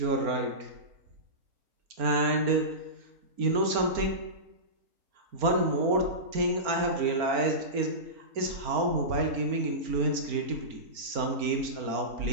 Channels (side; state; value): left; late; 4.4 ms